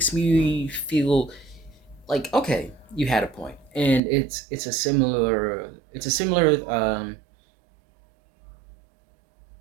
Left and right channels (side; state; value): left; drops out; at 4.0 s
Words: me feel like okay, you had a point, and it's a similar